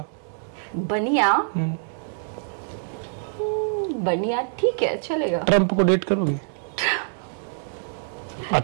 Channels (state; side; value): silent; left; 59 dB below the other